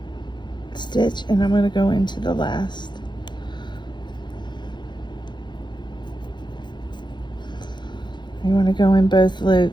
stitch and I'm going to go into the last. You want to go in both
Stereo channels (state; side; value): late; right; 0.22 ms